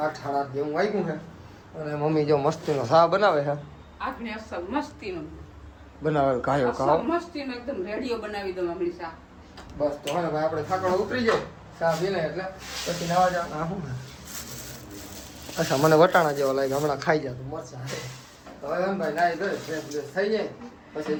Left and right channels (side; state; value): both; identical; correlation 1.00